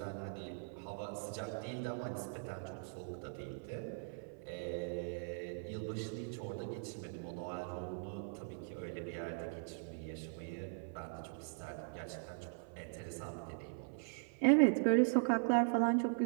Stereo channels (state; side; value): silent; left; 51 dB below the other